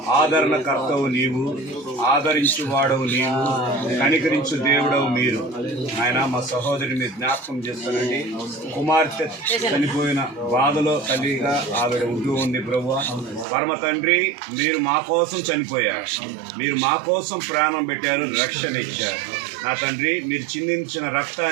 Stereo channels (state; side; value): drops out; left; at 13.5 s